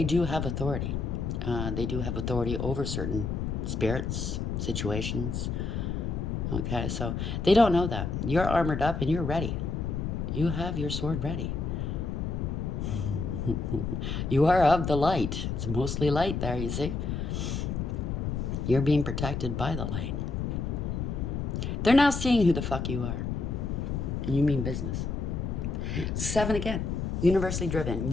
do have authority. They do have authority over certain spirits, situations, okay? So they don't know that. You're armored up and you're ready. You have your sword ready. You are of the light. It's mostly light there, you see? You're being protected by the light. They're now seeing who the fuck you are. You mean business. 7 again. Universally driven.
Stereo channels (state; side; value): noise; left; rumble, 2 dB below the sound